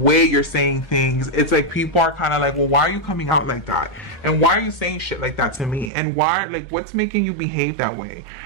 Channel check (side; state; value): left; drops out; at 5.9 s